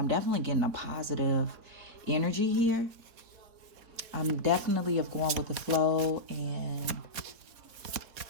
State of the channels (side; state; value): left; late; 4.2 ms